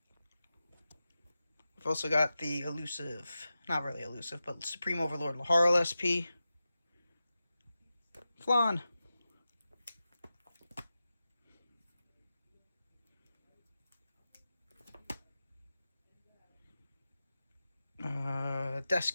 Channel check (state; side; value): inverted; both; correlation -0.93